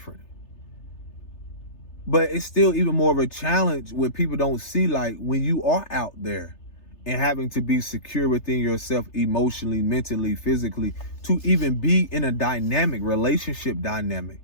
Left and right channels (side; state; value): right; late; 3.3 ms